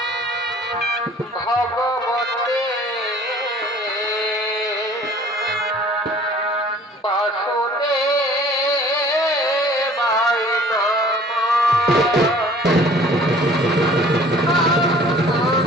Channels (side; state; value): both; normal; correlation 0.51